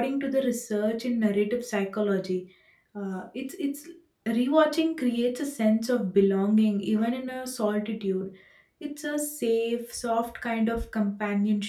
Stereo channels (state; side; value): identical; both; correlation 1.00